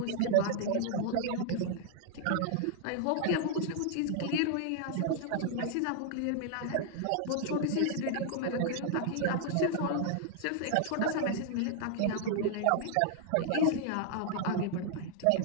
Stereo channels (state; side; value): different; both; correlation -0.01